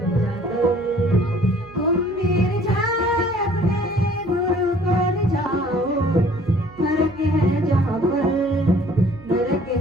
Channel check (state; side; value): noise; right; hum, 23 dB below the sound